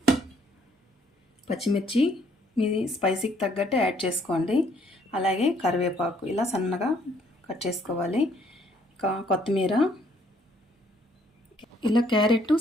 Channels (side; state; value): both; normal; correlation 0.65